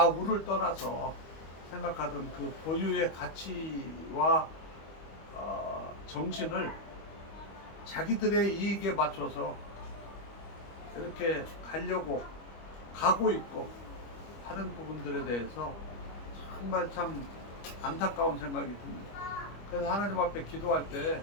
떠나서 생각하던 그 고유의 가치와 정신을 자기들의 이익에 맞춰서 이렇게 가려고 가고 있고 하는 부분들에 대해서 정말 참 안타까운 생각이 듭니다. 그래서 하나님 앞에 기도할 때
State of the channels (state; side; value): late; right; 25 ms